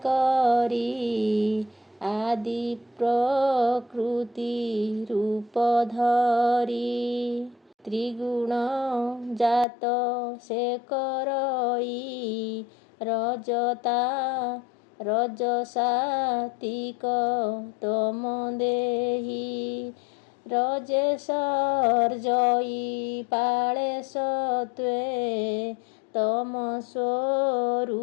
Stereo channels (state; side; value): drops out; right; at 9.7 s